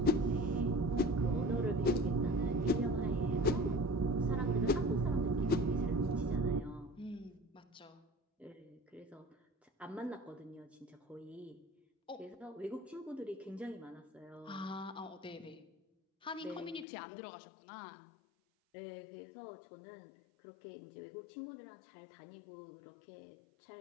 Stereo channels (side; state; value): right; drops out; at 16.9 s